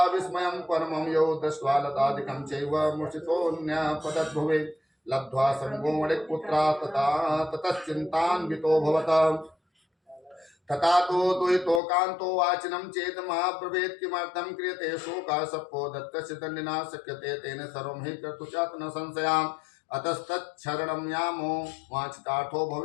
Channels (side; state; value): right; drops out; at 11.8 s